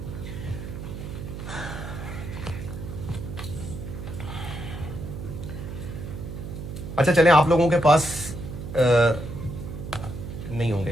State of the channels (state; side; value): noise; right; hum, 8 dB below the sound